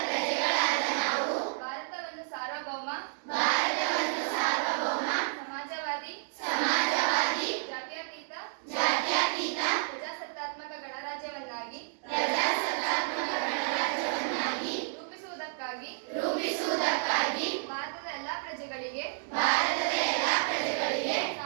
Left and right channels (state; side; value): silent; left; digital silence